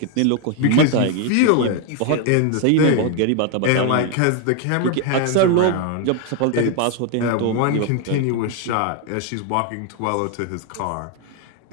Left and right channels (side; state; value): both; different; correlation 0.01